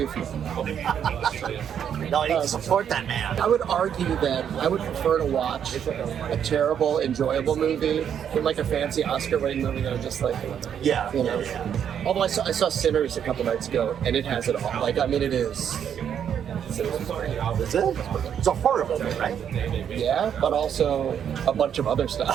of it. No, I need to support that man. I would argue that I would prefer to watch a terrible, enjoyable movie than like a fancy Oscar-winning movie that I'm just like, Yeah. you know. Although I saw Sinners a couple nights ago, and it has it all. Like, I mean, it is. Sinners is great. Is it? It's a horror movie, right? Yeah, but also a bunch of other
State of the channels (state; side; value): quieter; left; 8.6 dB